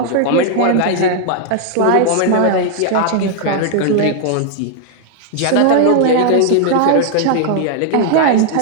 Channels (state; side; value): different; both; correlation 0.00